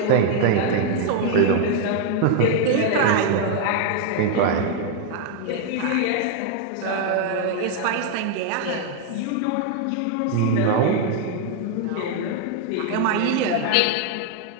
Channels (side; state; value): both; different; correlation 0.00